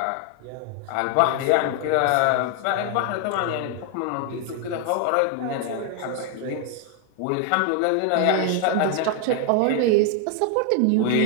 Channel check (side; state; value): both; different; correlation 0.00